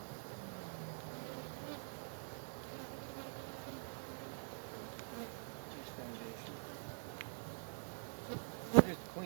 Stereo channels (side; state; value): left; silent; digital silence